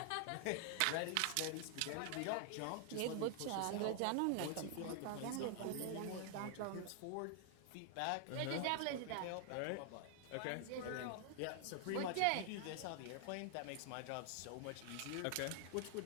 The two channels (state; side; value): different; both; correlation 0.00